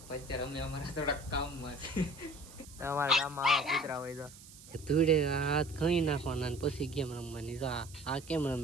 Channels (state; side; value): noise; right; hiss, 19 dB below the sound